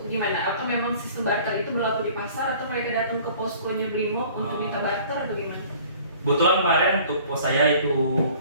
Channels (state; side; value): inverted; both; correlation -0.51